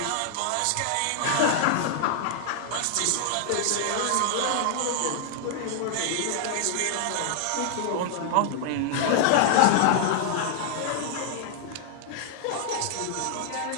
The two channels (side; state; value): both; different; correlation -0.01